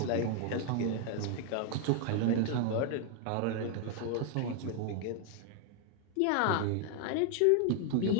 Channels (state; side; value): different; both; correlation 0.00